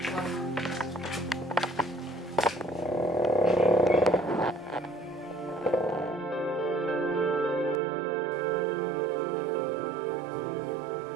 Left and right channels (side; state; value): left; drops out; at 7.8 s